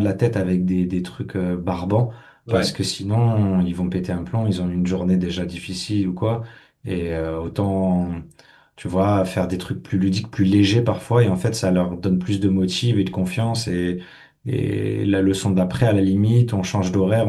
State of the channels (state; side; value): identical; both; correlation 1.00